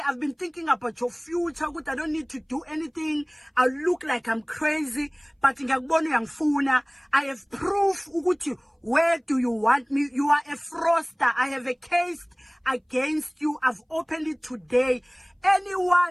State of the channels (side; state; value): both; identical; correlation 1.00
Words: been thinking about your future. Good, I don't need to do anything. I look like I'm crazy. But I have proof. Where do you want me? You are a fraudster. I have a case against you. I've opened it today.